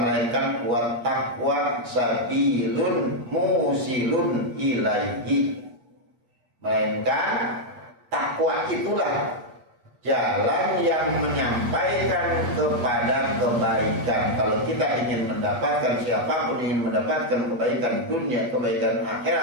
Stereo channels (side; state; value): left; late; 8.3 ms